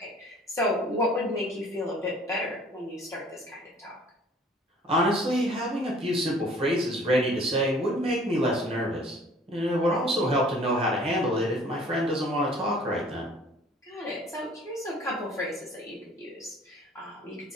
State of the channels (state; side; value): normal; both; correlation 0.53